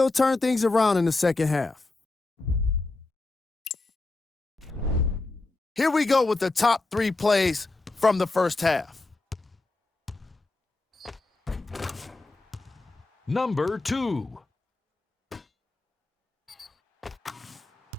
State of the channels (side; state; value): right; quieter; 3.2 dB